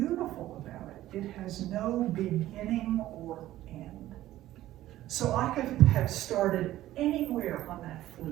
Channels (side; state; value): left; quieter; 14.5 dB